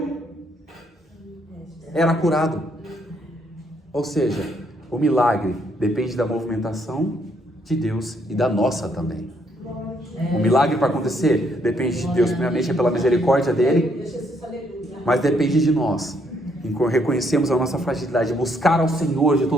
era curado. Ou seja, o milagre depende da movimentação de Deus e da nossa também. O milagre para acontecer depende de Deus, primeiramente é pela misericórdia dele, mas depende de nós. Reconhecemos a nossa fragilidade, buscar ao Senhor de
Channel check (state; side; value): normal; both; correlation 0.71